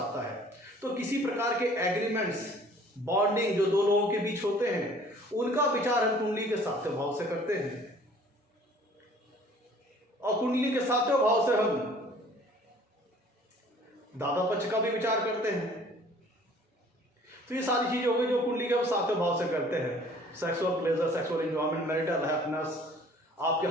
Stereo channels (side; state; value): both; normal; correlation 0.53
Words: है। तो किसी प्रकार के एग्रीमेंट्स, बॉन्डिंग जो दो लोगों के बीच होते हैं, उनका विचार हम कुंडली के सातवें भाव से करते हैं। और कुंडली के सातवें भाव से हम दादा पक्ष का भी विचार करते हैं। तो ये सारी चीजें हो गई जो कुंडली के हम सातवें भाव से करते हैं। Sexual pleasure, sexual enjoyment, marital happiness, आपके